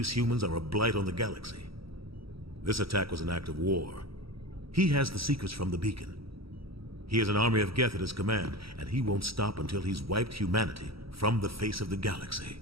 humans are a blight on the galaxy. This attack was an act of war. He has the secrets from the beacon. He has an army of Geth at his command, and he won't stop until he's wiped humanity from the face of the galaxy.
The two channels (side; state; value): left; late; 0.75 ms